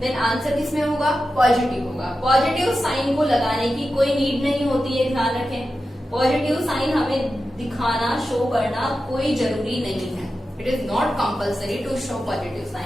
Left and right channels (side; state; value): both; normal; correlation 0.92